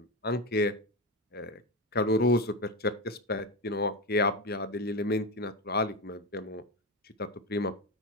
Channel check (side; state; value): both; normal; correlation 0.16